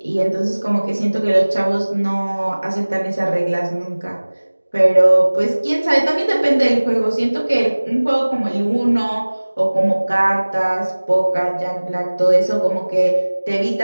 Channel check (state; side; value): inverted; both; correlation -1.00